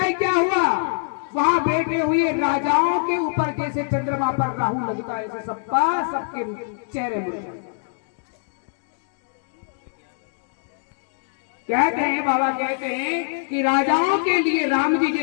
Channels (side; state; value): right; silent; digital silence